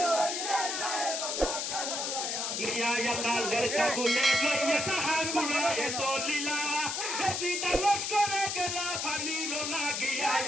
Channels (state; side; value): noise; left; hiss, 2 dB below the sound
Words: করিলে সাহেব আল্লাহ কারবালা নিয়ায় আল্লাহ লড়কা গুলে লইয়া সাহা কুড়ায়ে চলিলা এদি দালস করে গেলা পানির লাগিয়া